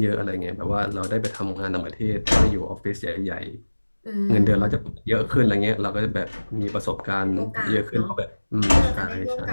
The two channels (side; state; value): both; inverted; correlation -1.00